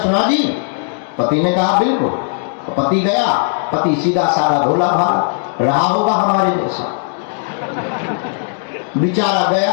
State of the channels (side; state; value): right; silent; 69 dB below the other